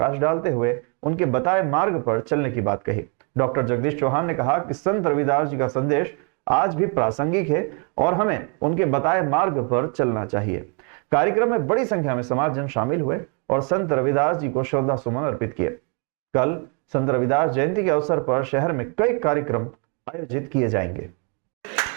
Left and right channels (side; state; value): left; quieter; 37.0 dB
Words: डालते हुए उनके बताए मार्ग पर चलने की बात कही। डॉक्टर जगदीश चौहान ने कहा कि संत रविदास जी का संदेश आज भी प्रासंगिक है और हमें उनके बताए मार्ग पर चलना चाहिए। कार्यक्रम में बड़ी संख्या में समाजजन शामिल हुए और संत रविदास जी को श्रद्धा सुमन अर्पित किए। कल संत रविदास जयंती के अवसर पर शहर में कई कार्यक्रम आयोजित किए जाएंगे।